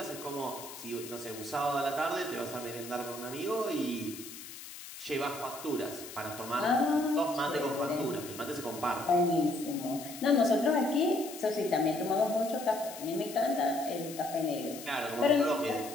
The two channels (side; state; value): left; noise; hiss, 13 dB below the sound